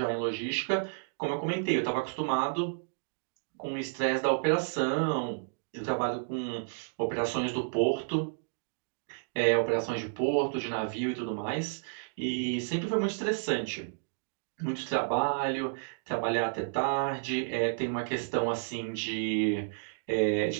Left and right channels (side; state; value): left; silent; digital silence